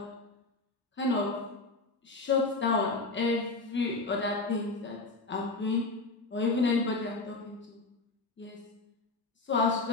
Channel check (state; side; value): quieter; right; 3.4 dB